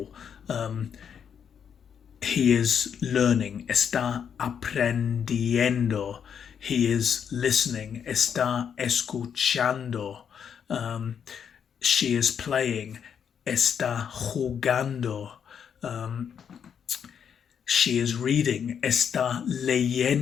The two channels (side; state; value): right; quieter; 7.7 dB